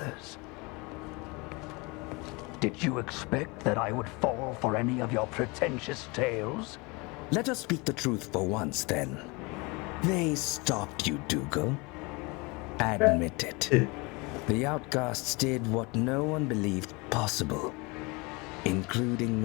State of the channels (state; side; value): quieter; right; 26.9 dB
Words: Did you expect that I would fall for any of your pretentious tales? Let us speak the truth for once, then. They stopped you, Dougal. Admit it. The outcasts did what no one believed possible, including